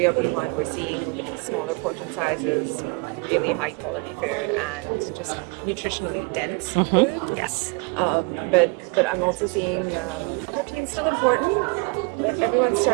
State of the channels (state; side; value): quieter; left; 30.9 dB